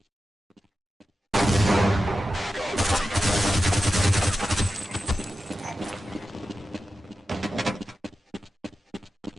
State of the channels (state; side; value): normal; both; correlation 0.92